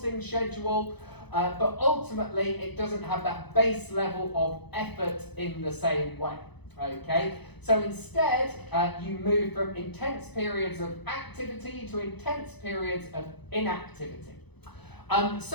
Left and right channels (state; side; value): late; right; 0.99 ms